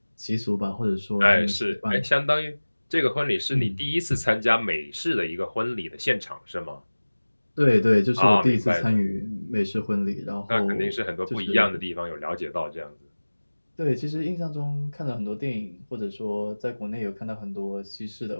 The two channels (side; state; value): both; inverted; correlation -1.00